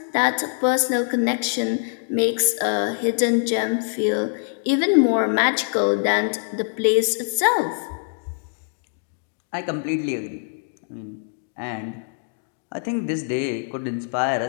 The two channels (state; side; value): silent; right; 63 dB below the other